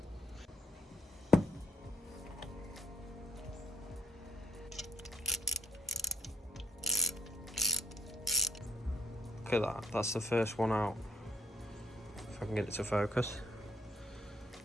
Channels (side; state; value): both; normal; correlation 0.66